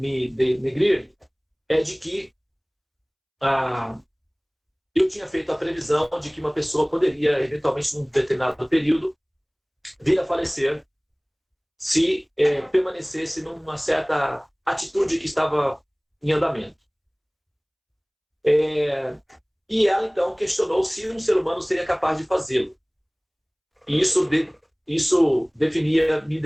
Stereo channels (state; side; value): identical; both; correlation 1.00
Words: denegrir é de que eu tinha feito a previsão de que uma pessoa poderia, eventualmente, num determinado período, vir a falecer se permanecesse numa certa atitude que estava em andamento. E ela, então, questionou se um ser humano seria capaz de fazê-lo. E isso me